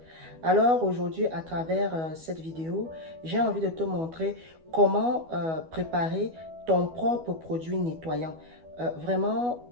Alors aujourd'hui, à travers cette vidéo, j'ai envie de te montrer comment préparer ton propre produit nettoyant. Vraiment,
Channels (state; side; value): late; left; 12 ms